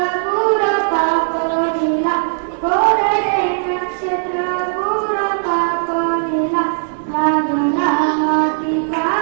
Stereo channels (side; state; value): left; silent; digital silence